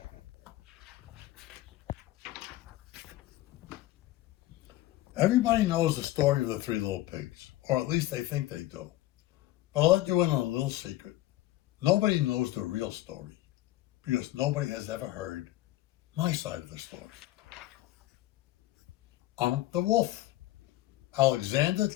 Everybody knows the story of the Three Little Pigs, or at least they think they do. But I'll let you in on a little secret. Nobody knows the real story, because nobody has ever heard my side of the story. I'm the wolf, Alexander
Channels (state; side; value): quieter; right; 15.8 dB